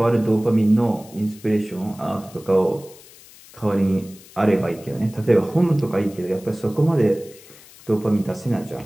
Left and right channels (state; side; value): noise; left; hiss, 22 dB below the sound